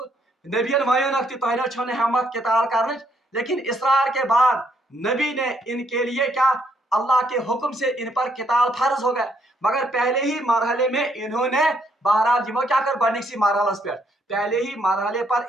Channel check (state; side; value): normal; both; correlation 0.71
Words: नबियन वयोनक तह छो हिम्मत किताल करने, लेकिन इसरार के बाद नबी ने इनके लिए क्या अल्लाह के हुक्म से इन पर किताल फर्ज हो गया। मगर पहले ही मरहले में इन्होंने बहरहाल जिमो क्या कर बनिक मरहलस पे पहले ही मरहले पर